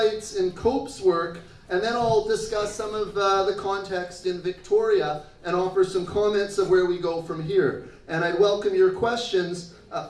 in Cope's work, and then I'll discuss some of the context in Victoria and offer some comments of where we go from here. And I'd welcome your questions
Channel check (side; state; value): both; identical; correlation 1.00